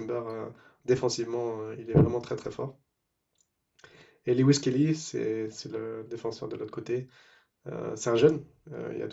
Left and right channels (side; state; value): both; identical; correlation 1.00